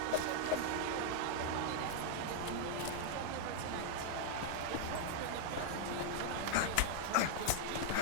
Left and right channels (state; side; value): different; both; correlation -0.01